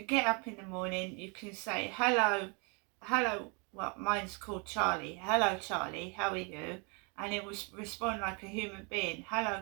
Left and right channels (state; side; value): quieter; left; 33.0 dB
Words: get up in the morning, you can say hello, well, mine's called Charlie. Hello Charlie, how are you? And it will respond like a human being. Hello